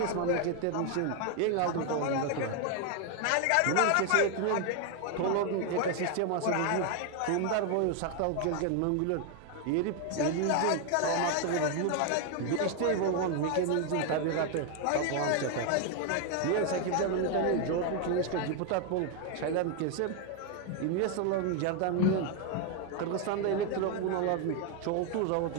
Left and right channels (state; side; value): different; both; correlation 0.01